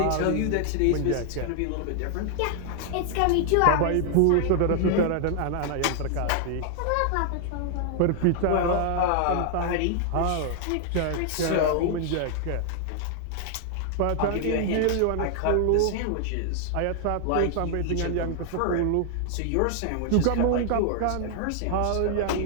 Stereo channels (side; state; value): both; different; correlation 0.00